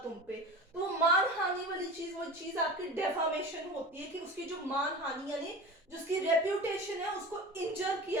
तुम पे. तो वो मानहानि वाली चीज वो चीज आपकी डेफामेशन होती है कि उसकी जो मानहानि यानी जो उसकी रेप्यूटेशन है उसको इंजर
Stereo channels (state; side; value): normal; both; correlation 0.33